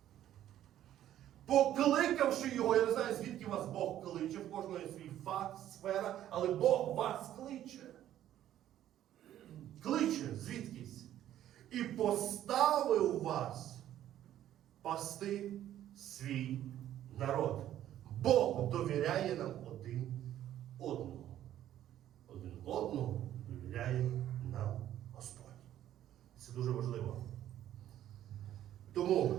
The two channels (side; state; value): left; quieter; 12.0 dB